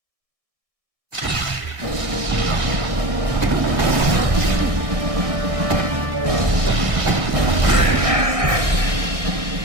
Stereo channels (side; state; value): left; late; 1.7 ms